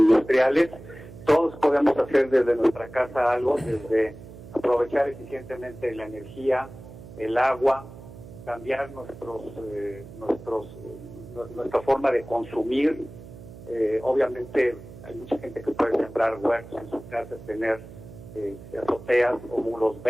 todos podemos hacer desde nuestra casa algo, desde aprovechar eficientemente la energía, el agua, cambiar nuestra forma de consumir. Obviamente hay mucha gente que puede sembrar huertos en su casa, tener azoteas o muros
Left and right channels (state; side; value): noise; right; hum, 16 dB below the sound